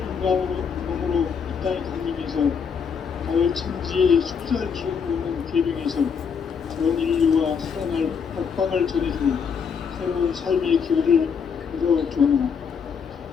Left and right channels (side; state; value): right; quieter; 6.5 dB